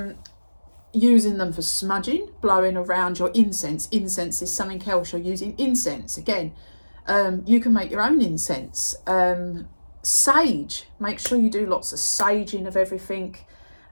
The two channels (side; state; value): both; inverted; correlation -1.00